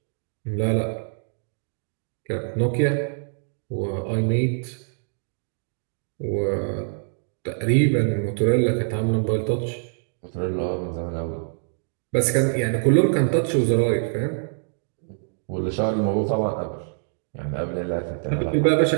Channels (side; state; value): left; silent; digital silence